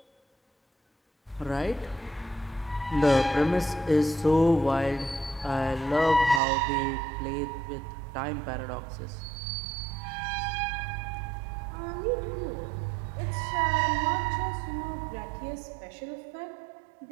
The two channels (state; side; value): drops out; left; at 6.4 s